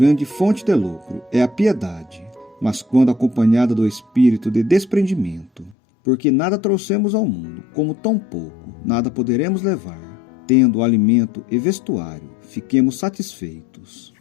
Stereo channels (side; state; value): right; drops out; at 5.8 s